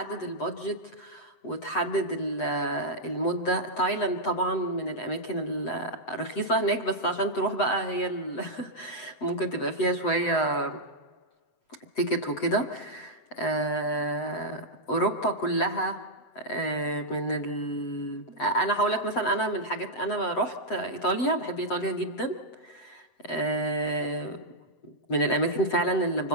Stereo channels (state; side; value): late; right; 7.9 ms